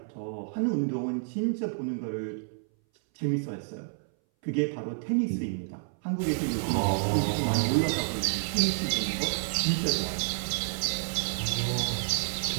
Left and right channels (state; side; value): silent; left; 58 dB below the other